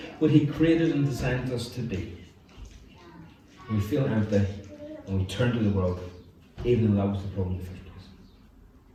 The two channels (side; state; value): both; identical; correlation 1.00